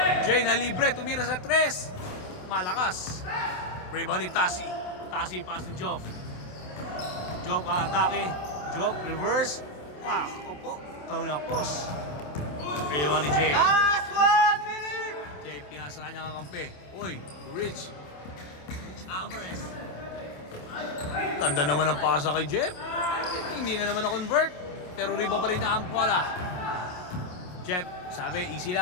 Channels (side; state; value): right; late; 27 ms